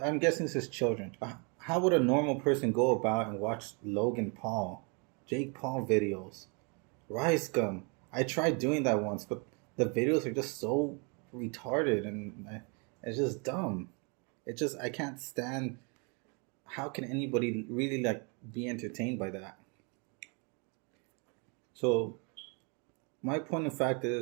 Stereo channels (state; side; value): quieter; left; 34.4 dB